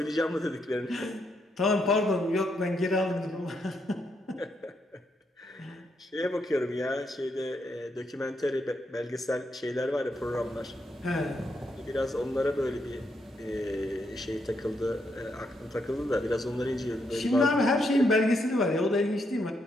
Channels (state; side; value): normal; both; correlation 0.78